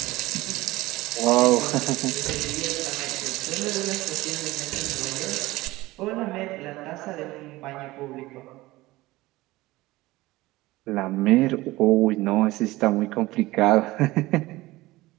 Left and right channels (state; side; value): quieter; left; 19.0 dB